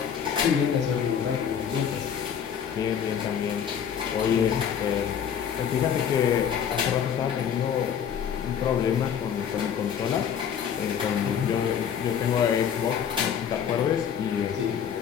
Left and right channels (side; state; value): right; quieter; 8.2 dB